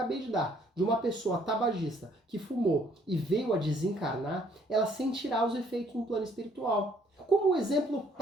de dar, de uma pessoa tabagista que fumou e veio a desencarnar, ela sentirá os efeitos no plano espiritual. Como um exemplo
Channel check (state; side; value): normal; both; correlation 0.64